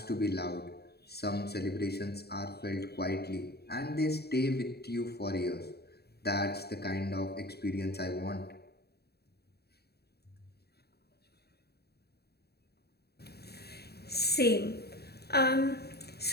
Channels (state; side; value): late; right; 0.47 ms